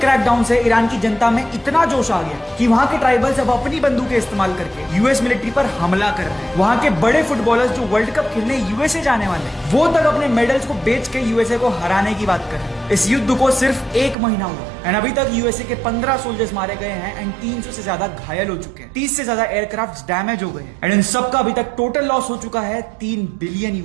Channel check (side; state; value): left; drops out; at 14.2 s